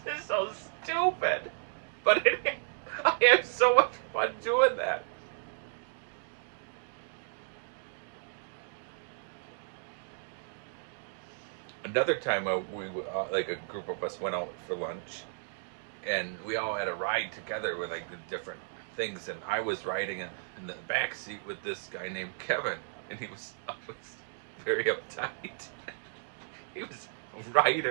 is so stupid. But I have so much fun doing that. Another time, like a group of us went out for lunch, and we all had a ride together with like the different things. And I was riding in the back seat with this guy named Kevin, and he was always very uptight. He was a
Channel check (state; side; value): silent; left; digital silence